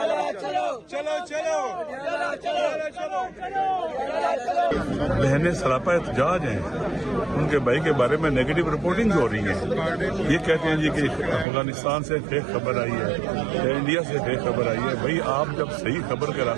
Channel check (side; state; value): left; drops out; at 11.5 s